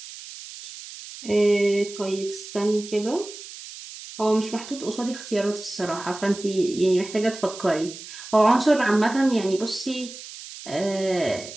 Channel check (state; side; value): noise; right; hiss, 14 dB below the sound